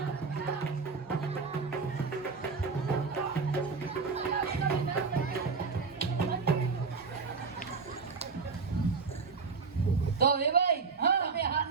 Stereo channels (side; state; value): left; quieter; 4.8 dB